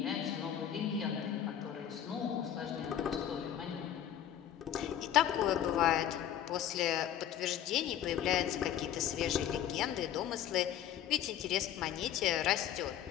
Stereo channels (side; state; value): right; quieter; 10.5 dB